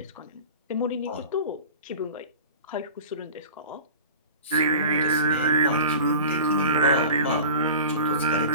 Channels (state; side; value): inverted; both; correlation -0.37